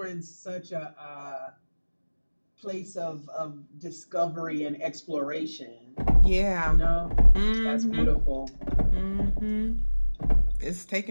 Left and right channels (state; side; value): inverted; both; correlation -1.00